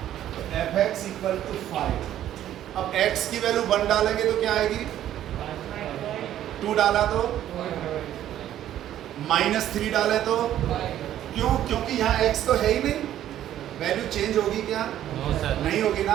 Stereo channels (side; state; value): left; quieter; 11.9 dB